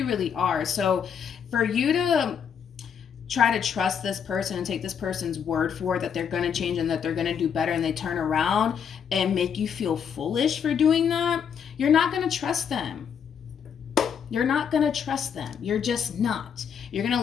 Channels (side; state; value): right; quieter; 7.5 dB